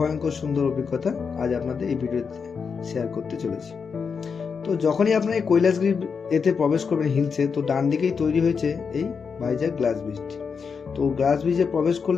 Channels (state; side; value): quieter; right; 5.8 dB